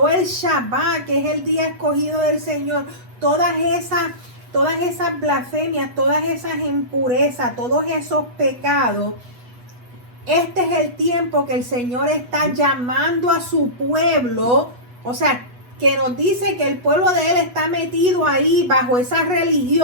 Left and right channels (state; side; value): late; left; 8.2 ms